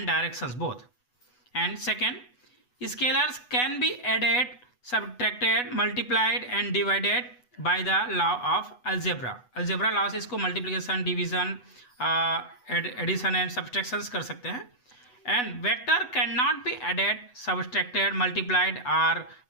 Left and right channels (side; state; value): right; late; 8.1 ms